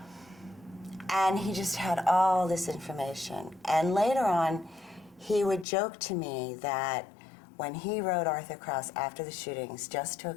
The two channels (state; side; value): drops out; right; at 5.7 s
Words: And he just had all this information. And later on, he would joke to me that when he wrote Arthur Krause after the shootings, just to